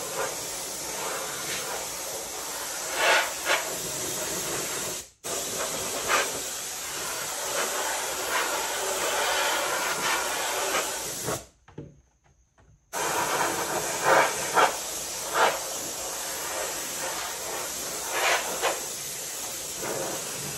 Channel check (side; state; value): both; identical; correlation 1.00